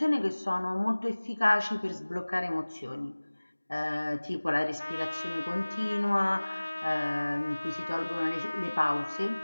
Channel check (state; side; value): inverted; both; correlation -1.00